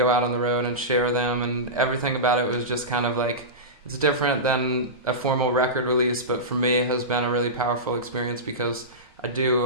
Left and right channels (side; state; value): both; normal; correlation -0.17